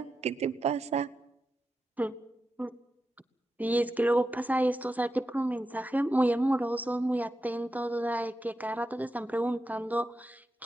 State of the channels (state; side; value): normal; both; correlation 0.89